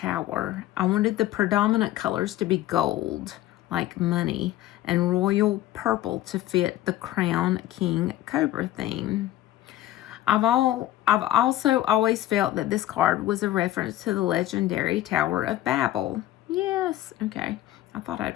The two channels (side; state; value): right; quieter; 14.3 dB